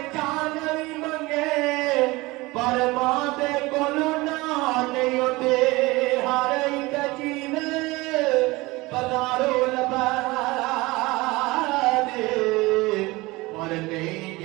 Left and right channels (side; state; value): left; quieter; 21.7 dB